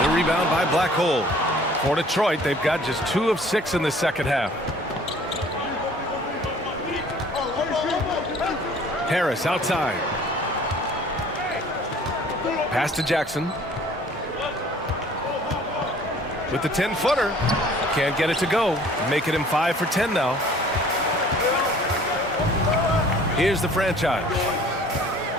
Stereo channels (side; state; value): both; normal; correlation 0.52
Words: The rebound by Black Hole. For Detroit, they've got just 2 of 6 in the second half. Harris outside. Pass to Jackson. With the 10-footer. Can't get it to go. Making him 5 for 10 now. Here's the franchise.